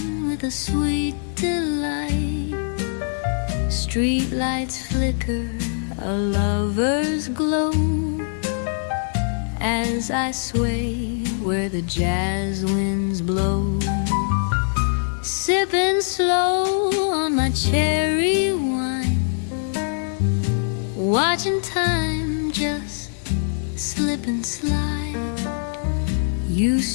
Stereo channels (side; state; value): right; silent; digital silence